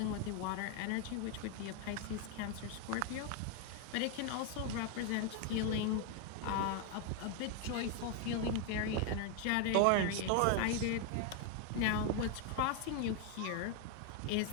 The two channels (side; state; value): both; different; correlation 0.01